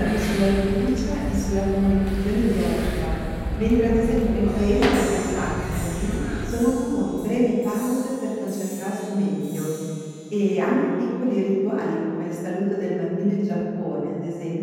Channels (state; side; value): identical; both; correlation 1.00